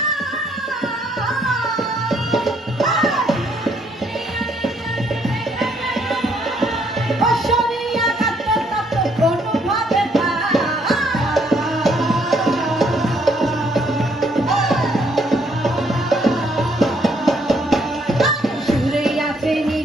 অশরিয়া কাত্ত তত্ত্ব কোনোভাবে সুরে আছে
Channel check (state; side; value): normal; both; correlation 0.69